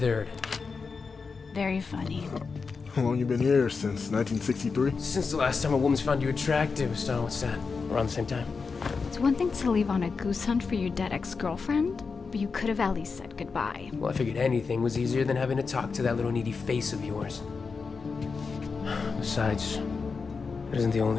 Very funny. How long you been here? Since 1963? Since the last time a woman's found you attractive, so what's that? Around the same time? It's one thing to leave on a goose hunt for your dead ex-girlfriend, but you could have at least said goodbye. Well, I figured anything was easier than having to talk to that little needy face of yours. Besides, it isn't the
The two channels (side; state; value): right; quieter; 4.9 dB